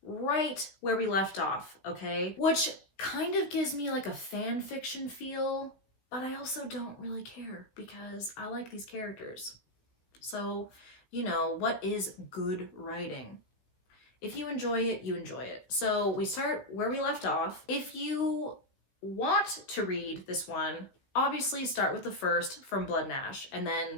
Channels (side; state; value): right; late; 16 ms